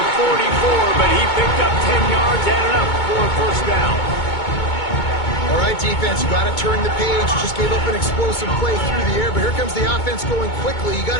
44, but he picked up 10 yards, added up for a first down. All right, defense, you got to turn the page. You just gave up an explosive play through the air, but here comes the offense going quickly. You got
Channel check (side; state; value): right; late; 2.2 ms